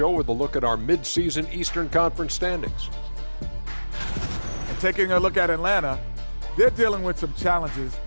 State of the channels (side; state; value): both; inverted; correlation -1.00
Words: with a look at our mid-season Eastern Conference standings. And taking a look at Atlanta, they're dealing with some challenges,